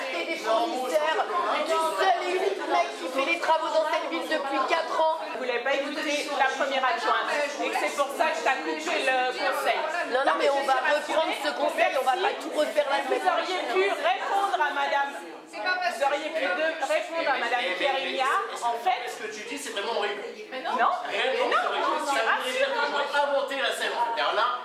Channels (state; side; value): identical; both; correlation 1.00